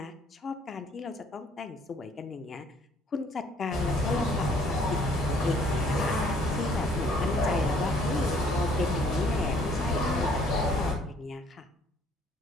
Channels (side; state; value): both; normal; correlation 0.60